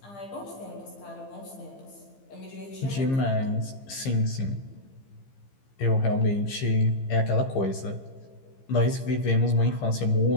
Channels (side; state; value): right; late; 15 ms